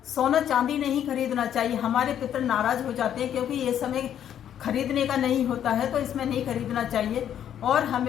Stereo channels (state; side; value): quieter; right; 9.9 dB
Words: सोना चांदी नहीं खरीदना चाहिए। हमारे पितर नाराज हो जाते हैं, क्योंकि ये समय खरीदने का नहीं होता है, तो इसमें नहीं खरीदना चाहिए। और